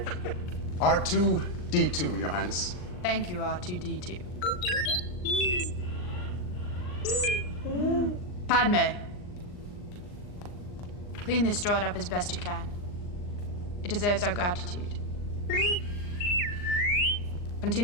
R2-D2, Your Highness. Thank you, R2-D2. Padme. Clean this droid up as best you can. It deserves our gratitude.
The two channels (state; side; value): late; right; 39 ms